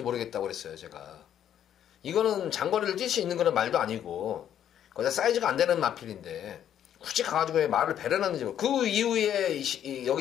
모르겠다고 그랬어요. 제가 이거는 장거리를 뛸 수 있는 그런 말도 아니고 거기다 사이즈가 안 되는 마필인데 굳이 가가지고 왜 말을 배려놨는지 그 이후에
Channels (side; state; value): right; quieter; 10.1 dB